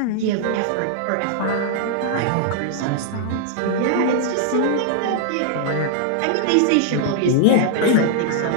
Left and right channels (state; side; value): different; both; correlation -0.01